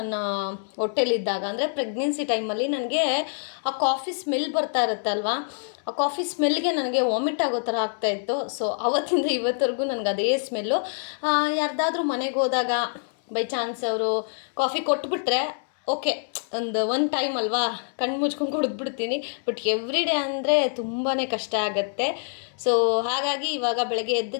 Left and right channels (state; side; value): silent; right; 61 dB below the other